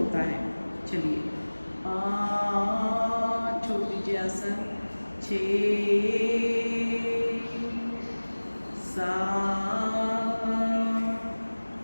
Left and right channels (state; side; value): inverted; both; correlation -1.00